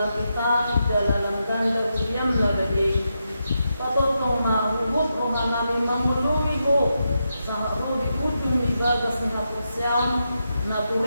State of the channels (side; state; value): both; inverted; correlation -0.86